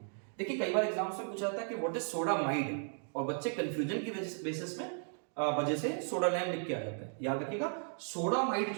देखिए कई बार एग्जाम्स में पूछा जाता है कि व्हाट इज सोडामाइड, और बच्चे कंफ्यूजन की बेसिस में वजह से सोडा लाइम लिख के आ जाता है। याद रखिएगा सोडामाइड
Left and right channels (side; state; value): left; silent; 54 dB below the other